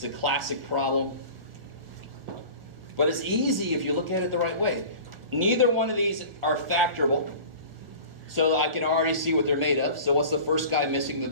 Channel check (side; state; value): left; late; 1.6 ms